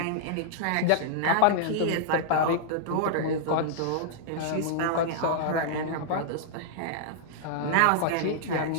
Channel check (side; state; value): both; different; correlation -0.01